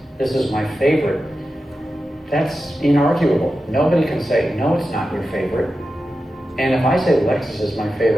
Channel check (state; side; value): normal; both; correlation 0.92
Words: this is my favorite, that's inarguable. Nobody can say, no, it's not your favorite. And if I say Lexus is my